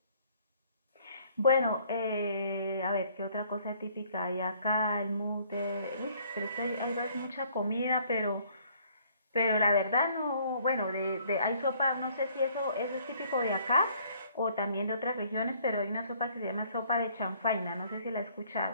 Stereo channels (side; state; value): both; inverted; correlation -0.61